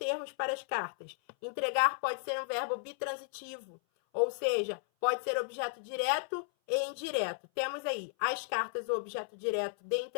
para as cartas. Entregar pode ser um verbo bitransitivo, ou seja, pode ser objeto direto e indireto. Temos aí as cartas, o objeto direto de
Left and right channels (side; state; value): right; silent; 55 dB below the other